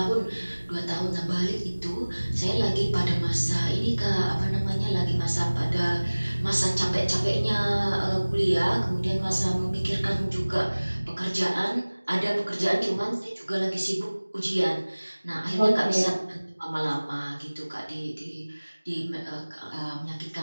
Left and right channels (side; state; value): both; inverted; correlation -1.00